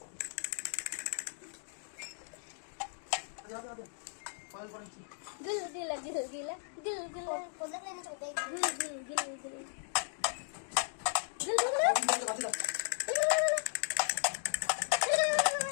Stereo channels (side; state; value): right; silent; digital silence